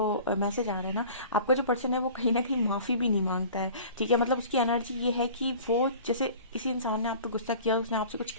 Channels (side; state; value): both; inverted; correlation -0.44